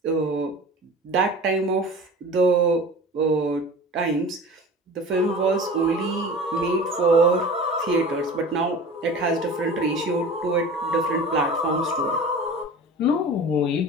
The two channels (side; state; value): both; normal; correlation 0.38